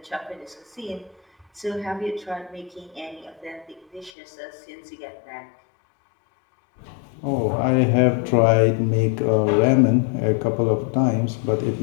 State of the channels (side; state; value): right; drops out; at 4.1 s